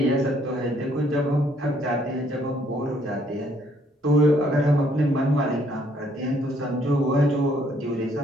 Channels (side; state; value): both; normal; correlation 0.66